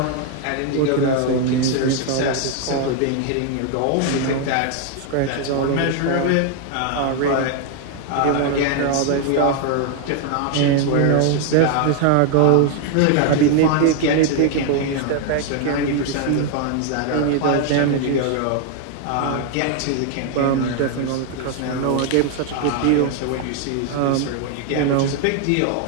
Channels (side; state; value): both; different; correlation 0.00